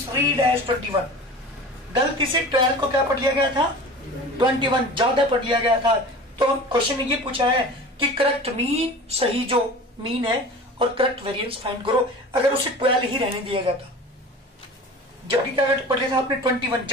एज 21। गलती से 12 को क्या पढ़ लिया गया था? 21 ज्यादा पढ़ लिया गया था। तो क्वेश्चन ने ये पूछा है कि करेक्ट मीन, सही जो मीन है, और करेक्ट वेरिएंस फाइंड करो। अगर उसे 12 ही रहने दिया जाता, जबकि क्या पढ़ लिया था आपने? 21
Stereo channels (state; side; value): normal; both; correlation 0.37